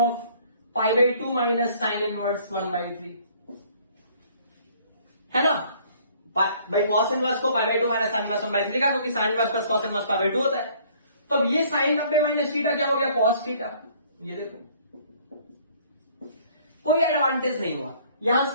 π/2 minus sine inverse 1/3, है ना। भाई कॉस इनवर्स को π/2 माइनस साइन इनवर्स 1/3 का, क्योंकि sine inverse plus cos inverse π/2 होता है। तो अब ये साइन 90 माइनस थीटा क्या हो गया, कॉस थीटा। ये देखो कोई एडवांटेज नहीं हुआ, यहां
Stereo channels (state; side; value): inverted; both; correlation -0.58